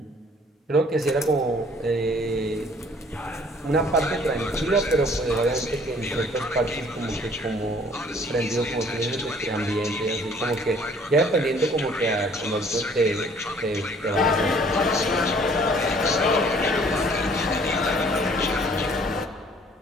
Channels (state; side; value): normal; both; correlation 0.57